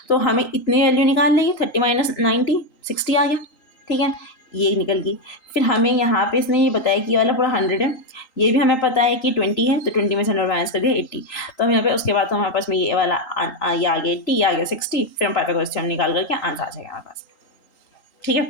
तो हमें इतनी वैल्यू निकाल लेंगे, 30 माइनस 90 60 आ गया, ठीक है, ये निकल गई। फिर हमें यहाँ पे इसने ये बताया कि ये वाला पूरा 100 है, ये भी हमें पता है कि 20 है, तो 20 में से 100 माइनस कर दिया 80। तो हम यहाँ पे उसके बाद तो हमारे पास में ये वाला ये आ गया 80, ये आ गया 60। फिर हम पाइथागोरस थ्योरम निकाल करके आंसर आ जाएगा हमारे पास, ठीक है।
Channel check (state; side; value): late; right; 3.8 ms